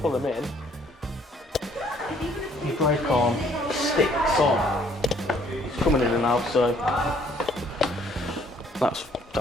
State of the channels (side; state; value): both; normal; correlation 0.62